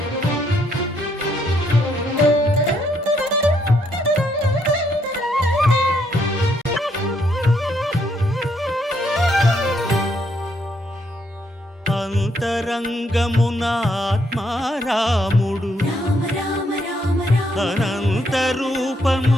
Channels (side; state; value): both; normal; correlation 0.73